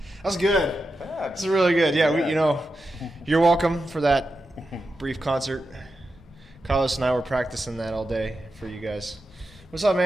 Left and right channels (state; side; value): normal; both; correlation 0.89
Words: That's good. Yeah. That's really good. Yeah, you're welcome for that brief concert. Carlos and I were practicing that all day for you guys. What's up,